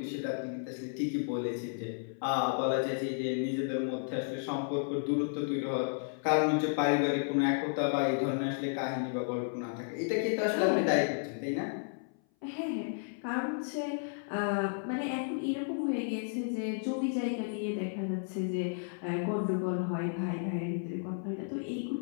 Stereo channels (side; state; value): right; silent; 56 dB below the other